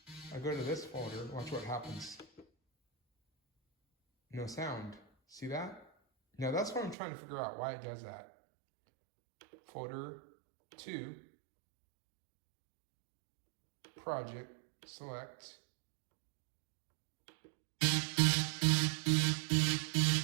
I go to this folder, watch what happens. No sound, see that? Now that's what I'm trying to figure out, why it does that. Folder 2, project, select. I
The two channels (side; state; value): left; drops out; at 7.0 s